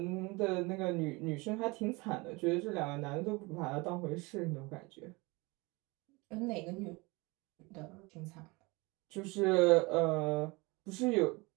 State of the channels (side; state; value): left; quieter; 25.4 dB